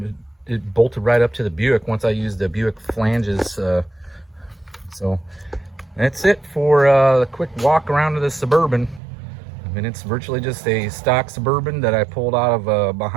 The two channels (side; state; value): left; drops out; at 9.0 s